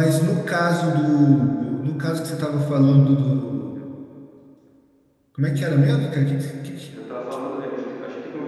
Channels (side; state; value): both; identical; correlation 1.00